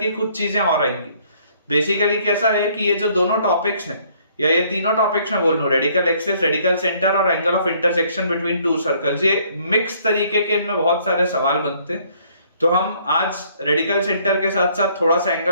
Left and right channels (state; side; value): inverted; both; correlation -0.63